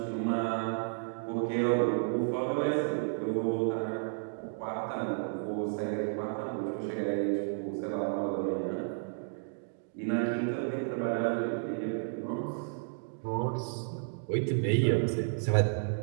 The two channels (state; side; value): silent; left; digital silence